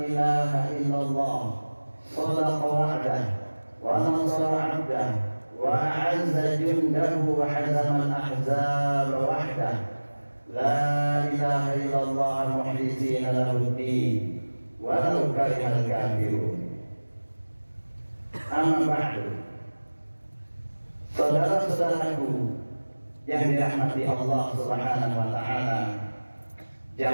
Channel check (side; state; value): both; inverted; correlation -1.00